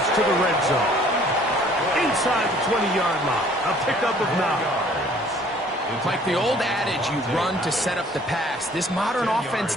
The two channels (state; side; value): normal; both; correlation 0.56